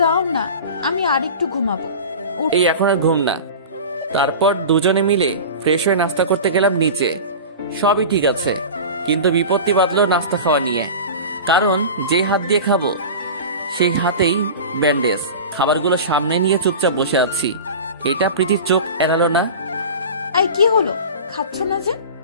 দাও না, আমি আর একটু ঘুমাবো। এই এখন আর ঘুম না। তারপর দুজনে মিলে ফ্রেশ হয়ে নাস্তা করতে গেলাম নিচে। সবই ঠিক আছে, কিন্তু বিপত্তি বাঁধলো নাস্তা খাওয়া নিয়ে। কারণ যে হাত দিয়ে খাবো সেই হাতেই ব্যান্ডেজ। খাবারগুলো সামনে নিয়ে চুপচাপ বসে আছি। এটা প্রীতির চোখ এড়ালো না। এই কি হলো, খাচ্ছ না যে?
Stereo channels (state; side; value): inverted; both; correlation -0.32